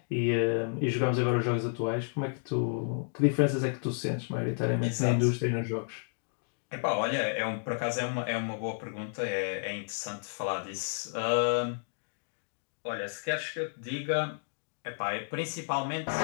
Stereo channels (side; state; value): right; silent; digital silence